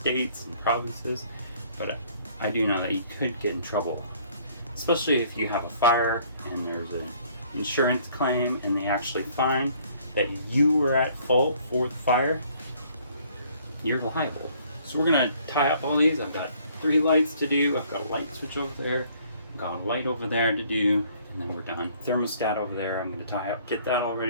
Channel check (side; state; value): both; inverted; correlation -0.60